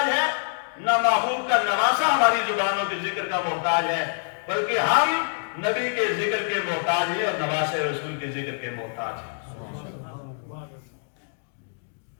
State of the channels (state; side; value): silent; right; digital silence